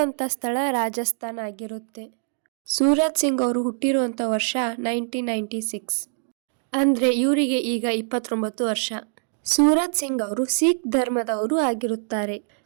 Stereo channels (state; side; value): silent; left; digital silence